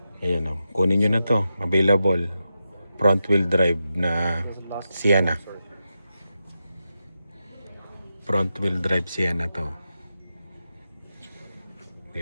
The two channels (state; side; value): inverted; both; correlation -0.89